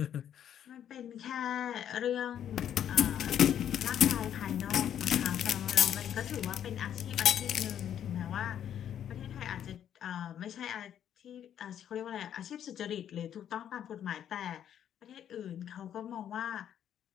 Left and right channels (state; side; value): quieter; right; 9.8 dB